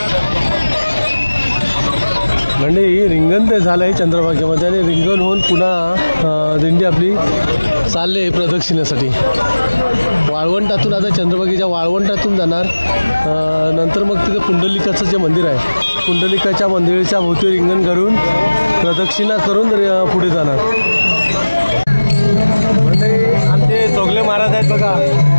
म्हणजे ही रिंगण ते झालं आहे चंद्रभागेमध्ये आणि रिंगण होऊन पुन्हा दिंडी आपली चालले आहे प्रदक्षिणेसाठी वाळवंटातून. आता चंद्रभागेच्या वाळवंटातून जाणार, नंतर मग तिथे पुंडलिकाचं जे मंदिर आहे पुंडलिकाच्या मंदिराच्या भोवती रिंगण करून प्रदक्षिणा करून पुढे जाणार. म्हणजे आमचे चोगले महाराज आहेत बघा,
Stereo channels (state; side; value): inverted; both; correlation -1.00